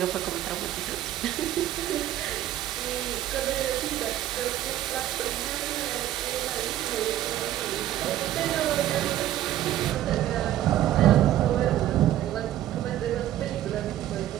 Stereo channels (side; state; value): left; quieter; 13.0 dB